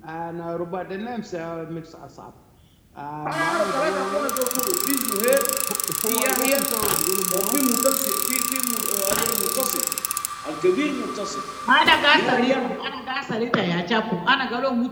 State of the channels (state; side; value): identical; both; correlation 1.00